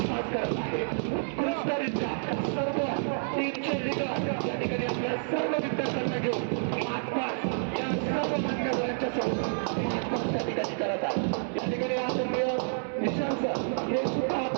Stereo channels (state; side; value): silent; left; 58 dB below the other